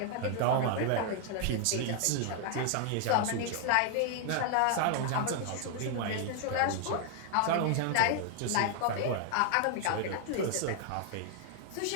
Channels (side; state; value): both; different; correlation 0.00